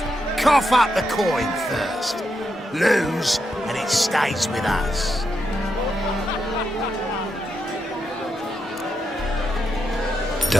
Cough up the coin first. Lose, and it stays with us.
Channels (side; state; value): both; normal; correlation 0.83